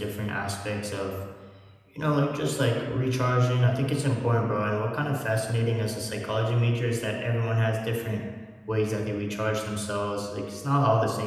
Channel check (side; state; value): both; identical; correlation 1.00